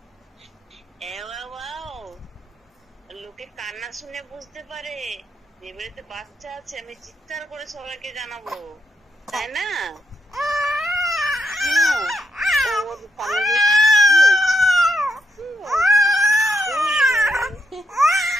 লোকে কান্না শুনে বুঝতে পারে যে বাড়িতে বাচ্চা আছে, আমি চিৎকার করে সবাইকে জানাবো, তাই না?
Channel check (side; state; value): both; normal; correlation 0.79